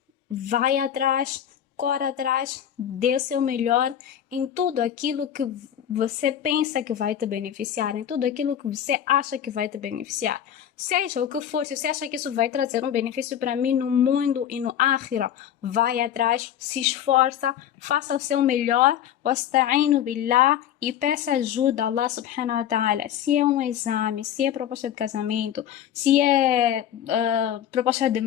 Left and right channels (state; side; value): quieter; right; 10.2 dB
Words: vai atrás, corre atrás, dê o seu melhor em tudo aquilo que você pensa que vai te beneficiar, em tudo aquilo que você acha que vai te beneficiar. Seja o que for, se você acha que isso vai trazer um benefício para mim no mundo e no akhira, vai atrás, se esforça, faça o seu melhor, wasta'inu billah, e peça ajuda a Allah subhanahu wa ta'ala. Se é um exame, se é proposta de casamento, se é proposta de